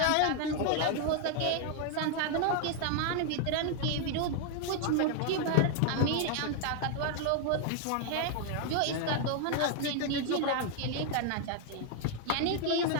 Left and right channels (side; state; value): both; different; correlation 0.00